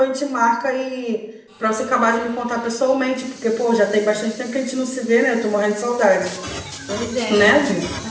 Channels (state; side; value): identical; both; correlation 1.00